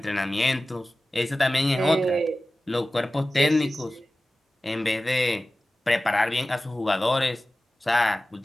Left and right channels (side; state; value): both; normal; correlation 0.96